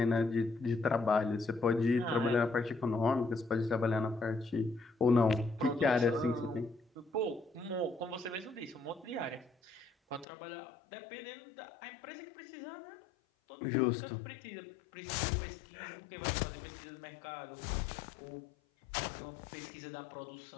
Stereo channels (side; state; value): right; drops out; at 10.2 s